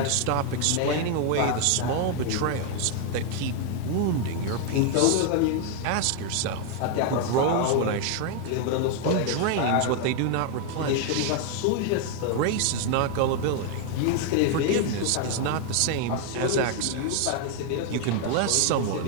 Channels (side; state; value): both; different; correlation 0.00